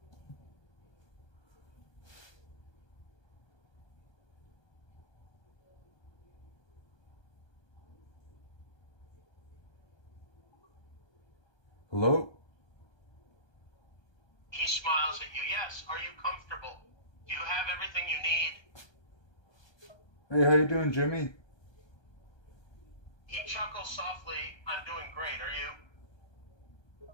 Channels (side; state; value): right; late; 1.3 ms